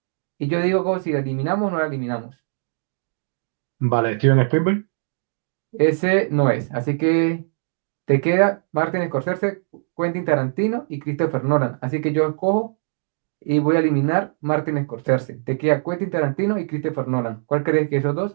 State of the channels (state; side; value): silent; left; digital silence